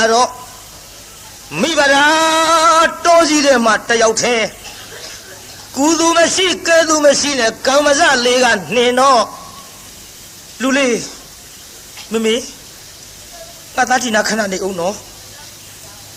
တော့မိဘရာတောကြီးတဲ့မှာတယောက်တည်းကုသူမရှိကဲသူမရှိနဲ့ကံမစလေးကနှင်တော့လူလေးမမေငါသားတီနာခဏနေအောင်နော်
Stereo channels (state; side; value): identical; both; correlation 1.00